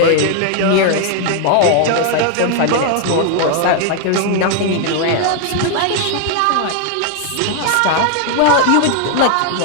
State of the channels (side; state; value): both; different; correlation 0.00